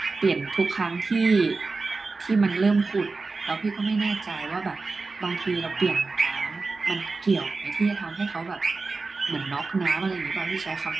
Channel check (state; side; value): quieter; left; 3.9 dB